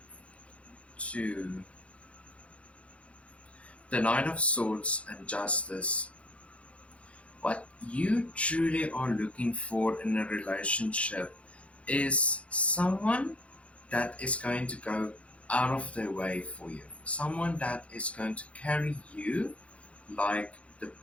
two, the Knight of Swords and Justice. What you truly are looking for in a relationship is someone that is going to go out of their way for you, someone that is going to carry you like the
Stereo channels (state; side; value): late; right; 0.062 ms